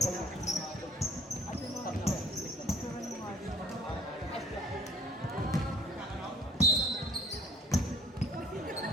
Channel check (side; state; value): both; normal; correlation 0.53